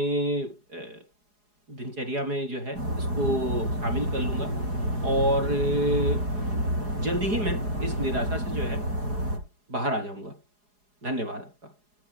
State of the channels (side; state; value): left; late; 4.8 ms